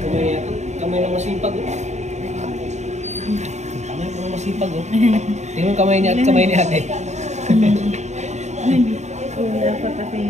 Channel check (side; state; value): left; late; 0.33 ms